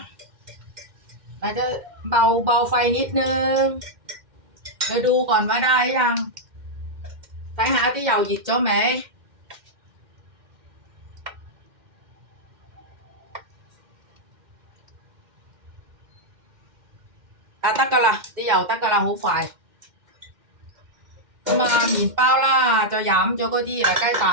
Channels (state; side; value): late; left; 2.1 ms